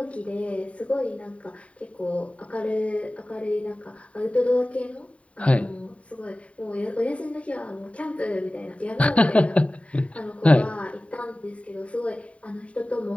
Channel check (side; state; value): right; late; 0.065 ms